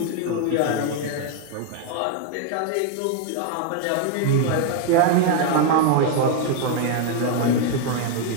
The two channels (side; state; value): both; different; correlation 0.01